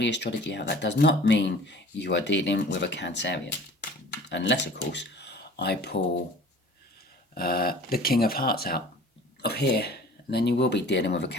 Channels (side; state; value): both; normal; correlation 0.46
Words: astrology out. That does not mean you are dealing with a Cancerian, unless, of course, I pull the King of Hearts out of here, and then you will be dealing with a